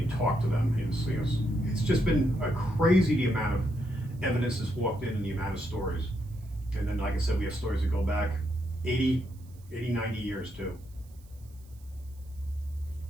talk to them. It's just been a crazy the amount of evidence that's walked in and the amount of stories. And then, like I said, we have stories that go back 80, 90 years too.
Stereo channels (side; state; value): right; noise; hiss, 29 dB below the sound